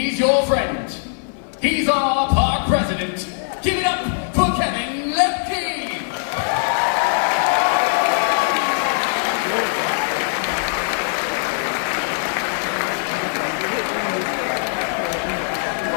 your friend. He's our park president. Give it up for Kevin Lembke.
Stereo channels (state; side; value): silent; right; 56 dB below the other